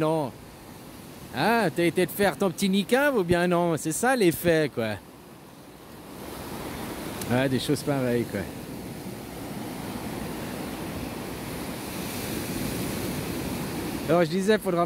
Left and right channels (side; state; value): both; identical; correlation 1.00